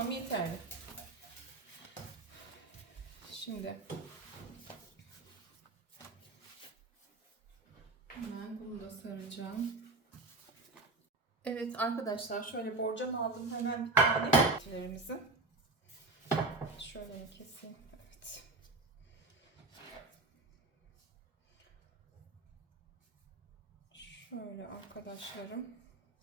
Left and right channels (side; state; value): left; quieter; 3.4 dB